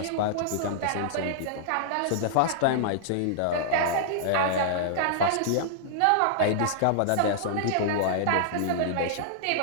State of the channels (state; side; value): different; both; correlation -0.01